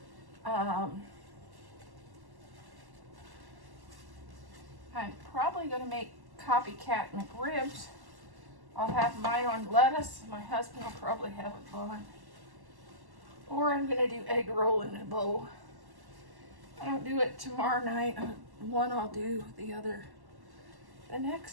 I'm probably going to make copycat McRibs. I'll have mine on lettuce. My husband will probably have it on. Or I'm going to do egg roll in a bowl. I don't do it tomorrow night. One I'll do, the other the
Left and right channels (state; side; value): late; left; 1.1 ms